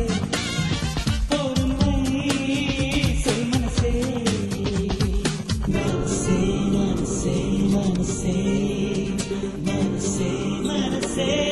பொறுமை சொல் மனசே. மனசே மனசே மனசே மனசே மனசே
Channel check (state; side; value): identical; both; correlation 1.00